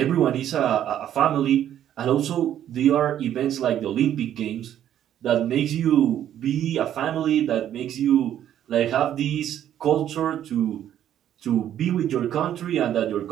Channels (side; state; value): left; quieter; 10.9 dB